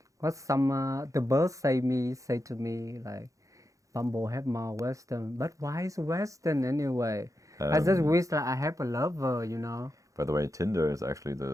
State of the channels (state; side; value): late; left; 0.16 ms